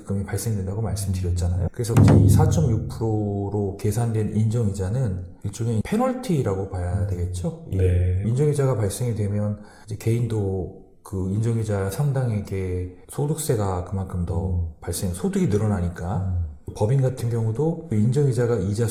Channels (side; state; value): both; identical; correlation 1.00